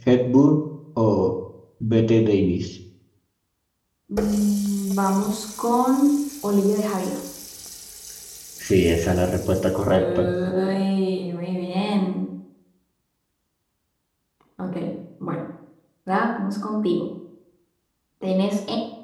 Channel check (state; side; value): identical; both; correlation 1.00